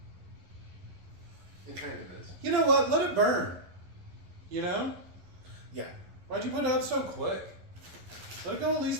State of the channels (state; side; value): late; left; 11 ms